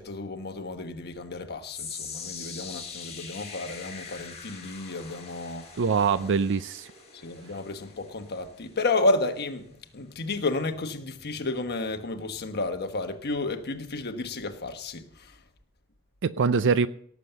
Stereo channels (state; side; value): normal; both; correlation -0.12